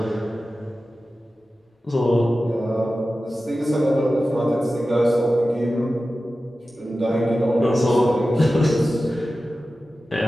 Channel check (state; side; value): normal; both; correlation 0.94